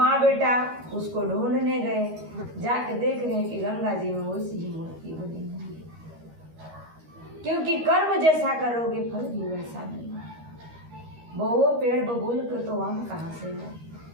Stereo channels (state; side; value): late; left; 13 ms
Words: बेटा उसको ढूंढने गए। जाके देख रहे हैं कि गंगा जी में वैसी ही मूर्ति बनी हुई है, क्योंकि कर्म जैसा करोगे फल भी वैसा मिलेगा। बहुओं पेड़ बबूल के तो आम कहाँ से है।